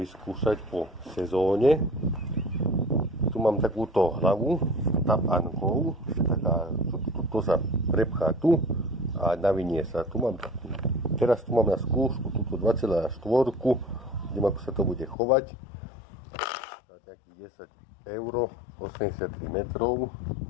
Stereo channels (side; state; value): right; drops out; at 15.2 s